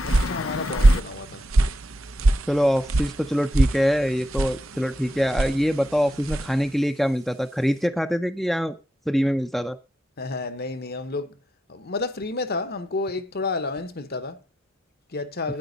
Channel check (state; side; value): normal; both; correlation 0.85